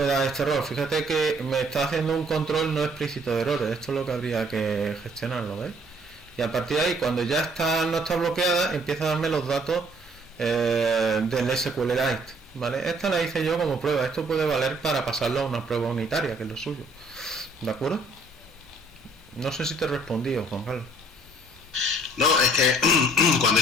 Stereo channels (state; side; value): normal; both; correlation 0.61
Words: da este error. Fíjate que me está haciendo un control no explícito de errores. Esto es lo que habría que gestionarlo, ¿veis? y a partir de ahí, cuando ya no está bloqueada, empieza a darme los datos del SQLite, ¿vale? Esta la hice yo como prueba. Esto puede valer para pasarlo a una prueba unitaria, que es lo suyo, ¿de acuerdo? No sé si te he respondido, Juan Carlos. No, es que cuando he